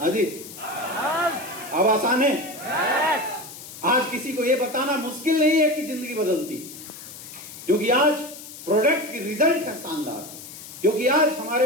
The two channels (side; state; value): left; noise; hiss, 14 dB below the sound